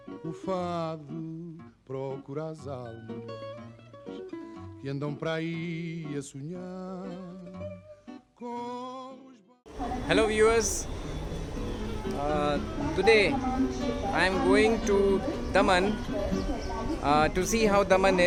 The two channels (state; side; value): identical; both; correlation 1.00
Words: o fado procura as almas que andam para aí a sonhar com os... Hello viewers, today I am going to Daman to see how Daman